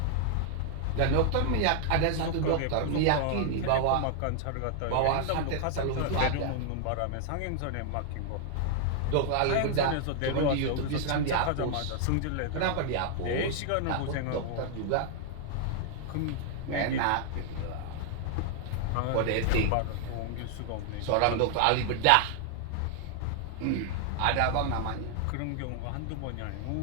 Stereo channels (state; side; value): different; both; correlation 0.00